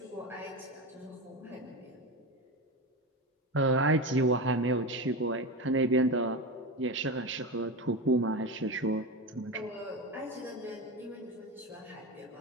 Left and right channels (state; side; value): normal; both; correlation 0.20